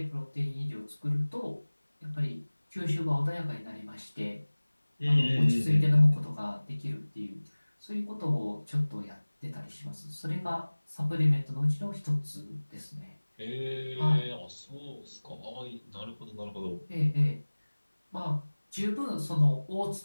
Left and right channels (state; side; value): inverted; both; correlation -1.00